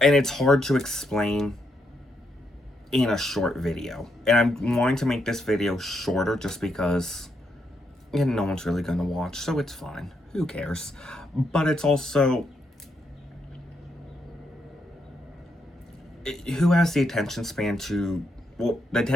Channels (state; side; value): normal; both; correlation 0.79